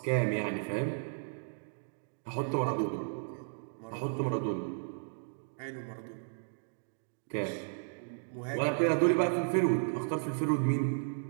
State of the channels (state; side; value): silent; left; digital silence